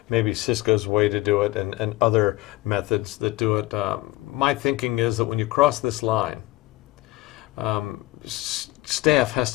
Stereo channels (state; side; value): quieter; right; 18.4 dB